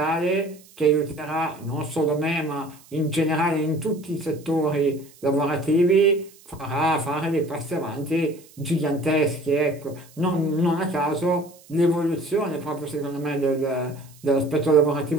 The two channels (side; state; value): right; noise; hiss, 25 dB below the sound